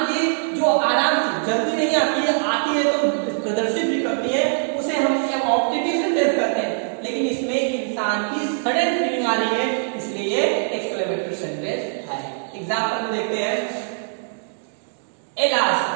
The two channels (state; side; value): silent; left; digital silence